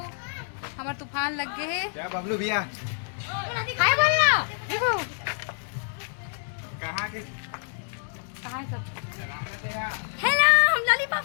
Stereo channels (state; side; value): silent; right; digital silence